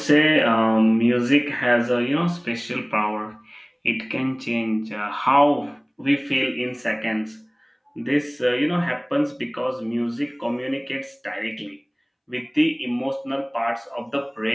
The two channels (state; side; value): identical; both; correlation 1.00